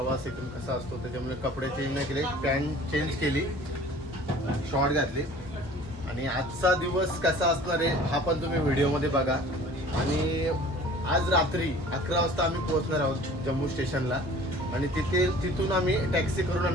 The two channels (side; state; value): both; normal; correlation 0.47